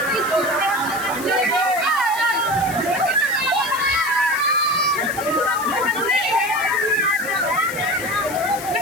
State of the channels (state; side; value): noise; left; hiss, 12 dB below the sound